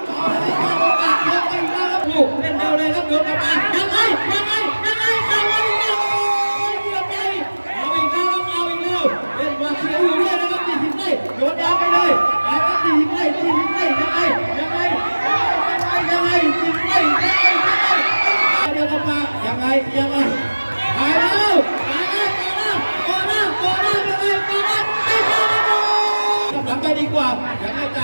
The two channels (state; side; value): inverted; both; correlation -1.00